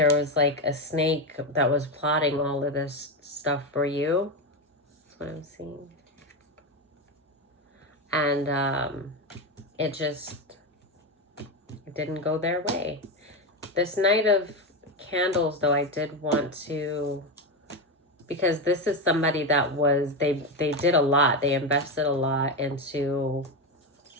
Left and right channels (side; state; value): both; normal; correlation 0.13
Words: was like a snake that was plotting all of this stuff for you. That's what I'm seeing. And it didn't go their way. This Knight of Candles, though, I did want to, because this is somebody that was, they did a lot. They invested a lot into